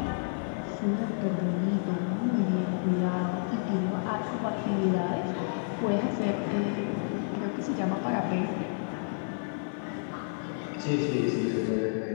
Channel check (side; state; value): right; silent; 58 dB below the other